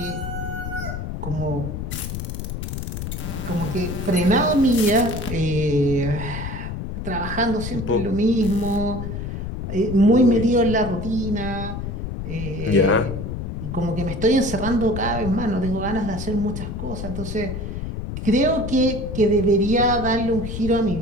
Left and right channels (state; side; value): noise; left; rumble, 5 dB below the sound